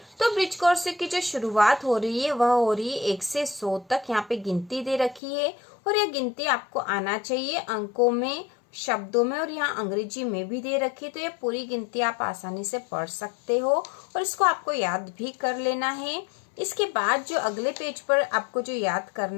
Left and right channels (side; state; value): right; drops out; at 5.2 s